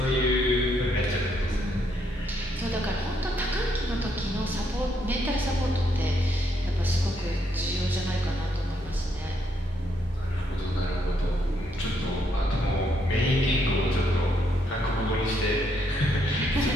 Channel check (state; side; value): normal; both; correlation 0.74